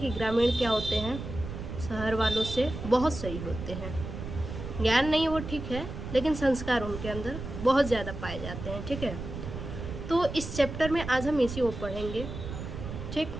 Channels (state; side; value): noise; right; rumble, 8 dB below the sound